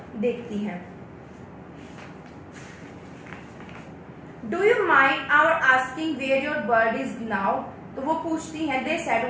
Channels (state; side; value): identical; both; correlation 1.00